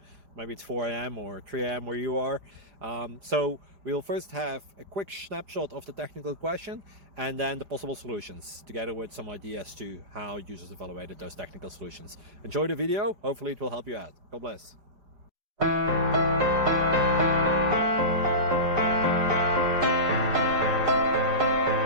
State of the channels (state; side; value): late; left; 5.0 ms